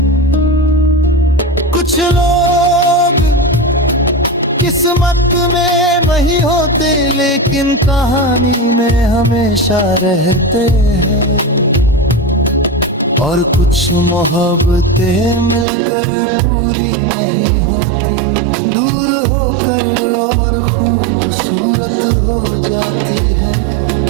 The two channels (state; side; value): drops out; left; at 15.7 s